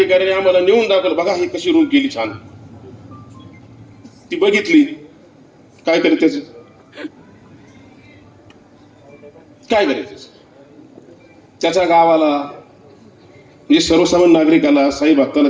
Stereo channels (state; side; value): identical; both; correlation 1.00